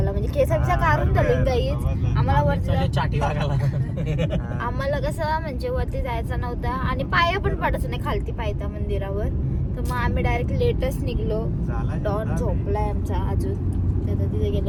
म्हणजे केसांचा काढून झाले गाईज. आम्हाला वरती आम्हाला कसं म्हणजे वरती जायचं नव्हतं आणि पाया पण पडायचं नाही खालती पायथा मंदिरावर. तर मग आम्ही डायरेक्ट लेटच निघलो. डॉन झोपलाय आमचा अजून. तर तिथे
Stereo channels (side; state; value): both; identical; correlation 1.00